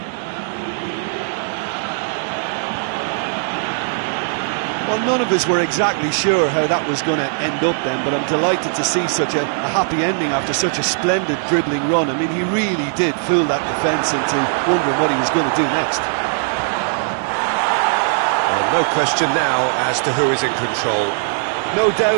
Well, none of us were exactly sure how that was going to end up then, but I'm delighted to see such a happy ending after such a splendid dribbling run. I mean, he really did fool that defence into wondering what he was going to do next. Well, no question now as to who is in control. No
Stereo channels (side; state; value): left; silent; digital silence